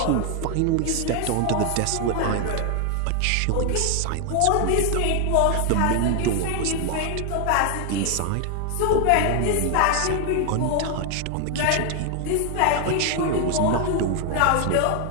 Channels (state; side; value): different; both; correlation 0.00